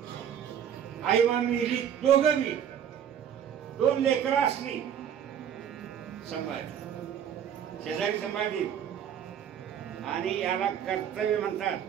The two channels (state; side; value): quieter; left; 9.0 dB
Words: आई मा मिली दोघं मी 2 लेकरं असली संभाळली शेजारी संभाळली आणि याला कर्तव्य म्हणतात.